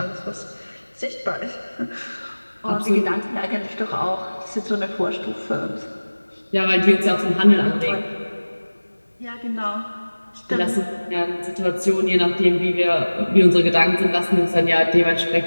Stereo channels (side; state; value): both; inverted; correlation -1.00